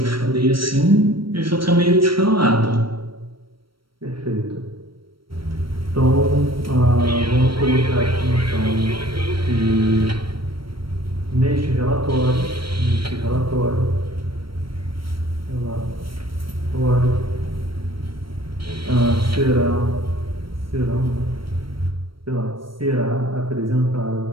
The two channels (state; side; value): late; left; 0.74 ms